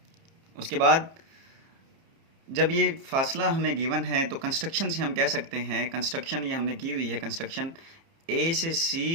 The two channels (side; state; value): left; late; 30 ms